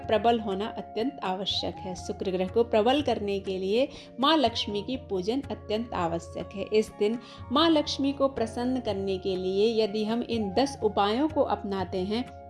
प्रबल होना अत्यंत आवश्यक है। शुक्र ग्रह को प्रबल करने के लिए माँ लक्ष्मी की पूजन अत्यंत आवश्यक है। इस दिन माँ लक्ष्मी को प्रसन्न करने के लिए यदि हम इन 10 उपायों को अपनाते हैं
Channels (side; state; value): both; identical; correlation 1.00